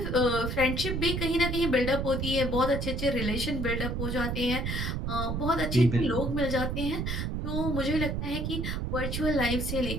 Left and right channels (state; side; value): noise; right; rumble, 2 dB below the sound